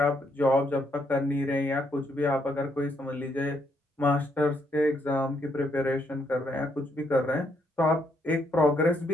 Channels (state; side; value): normal; both; correlation 0.74